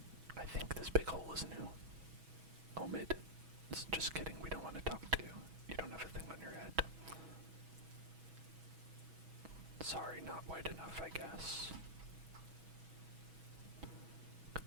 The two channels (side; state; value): left; late; 6.2 ms